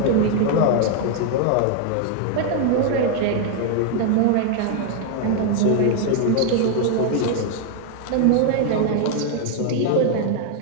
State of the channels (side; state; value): both; different; correlation 0.00